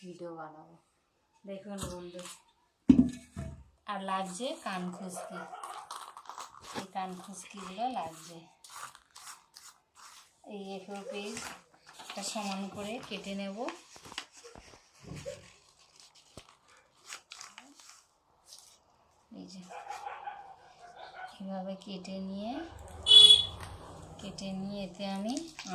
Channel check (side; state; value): both; identical; correlation 1.00